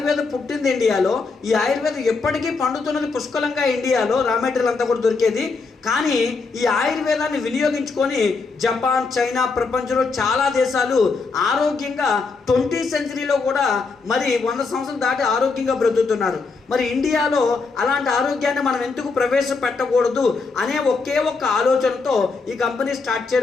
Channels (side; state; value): right; quieter; 4.3 dB